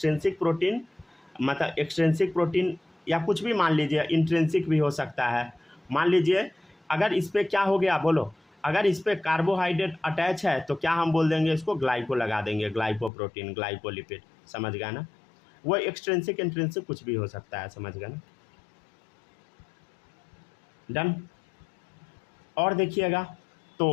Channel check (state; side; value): drops out; right; at 13.1 s